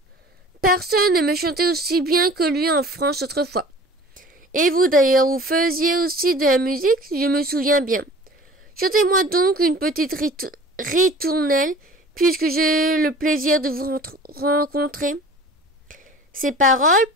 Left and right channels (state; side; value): normal; both; correlation 0.44